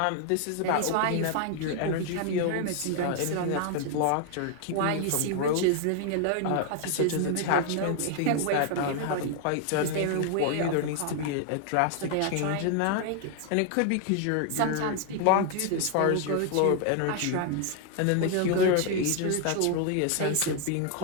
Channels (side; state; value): both; different; correlation 0.00